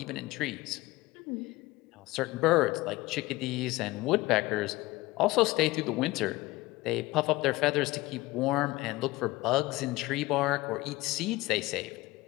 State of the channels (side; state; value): right; quieter; 19.8 dB